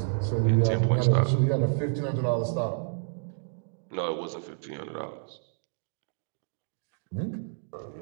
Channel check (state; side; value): silent; left; digital silence